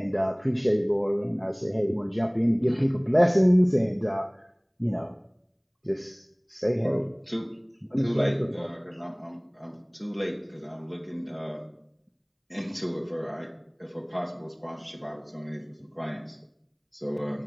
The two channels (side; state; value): both; identical; correlation 1.00